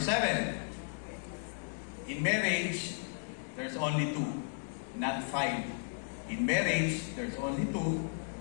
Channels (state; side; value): silent; right; digital silence